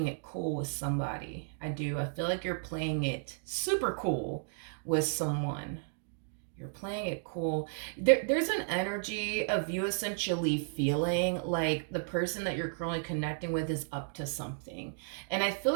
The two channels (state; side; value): silent; left; digital silence